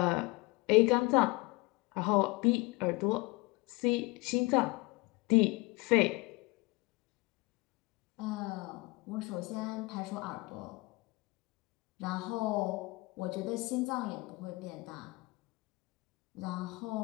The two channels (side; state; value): right; quieter; 24.2 dB